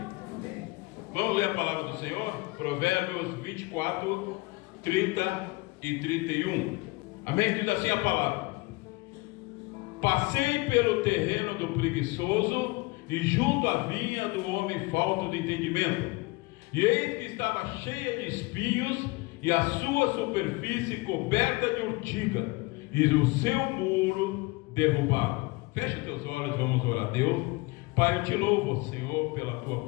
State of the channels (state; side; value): quieter; right; 24.2 dB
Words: Vamos ler a palavra do Senhor? Provérbios 24, 30 e 31. Amém? Diz assim a palavra: passei pelo terreno do preguiçoso e junto à vinha do homem falto de entendimento, e eis que estava cheia de espinhos, e a sua superfície coberta de urtiga, e o seu muro derrubado. Feche teus olhos, vamos orar a Deus. Pai, eu te louvo, Senhor, pela tua